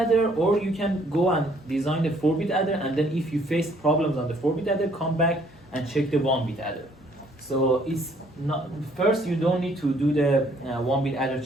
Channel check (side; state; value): both; normal; correlation 0.63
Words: or you can go and design the 4-bit adder, and then if you face problems on the 4-bit adder, come back and check the 1-bit adder. So it's not, first you don't need to do the 1-bit adder